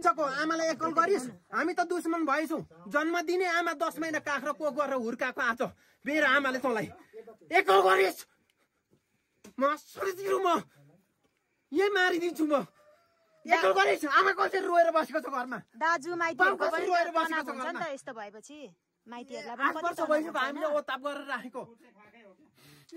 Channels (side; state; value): both; identical; correlation 1.00